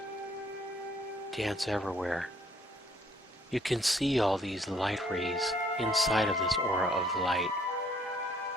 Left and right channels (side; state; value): both; normal; correlation 0.63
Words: dance everywhere. You can see all these light rays inside of this aura of light,